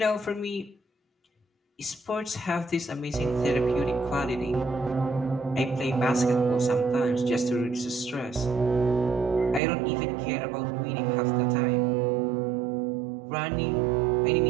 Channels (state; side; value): drops out; left; at 9.6 s